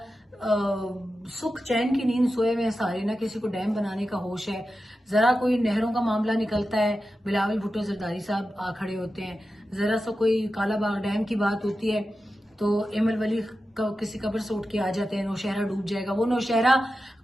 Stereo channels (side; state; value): both; normal; correlation 0.92